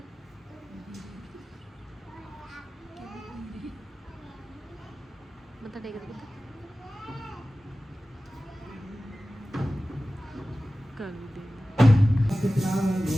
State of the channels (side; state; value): both; normal; correlation 0.96